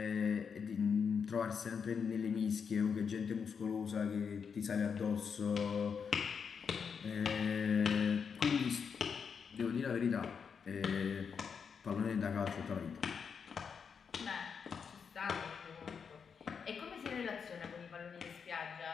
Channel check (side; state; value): right; quieter; 6.4 dB